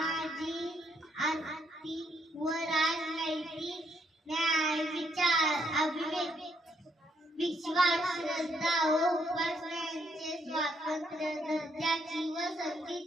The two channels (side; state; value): both; normal; correlation 0.74